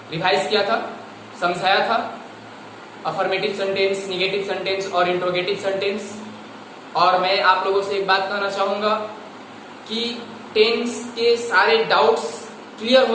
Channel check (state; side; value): identical; both; correlation 1.00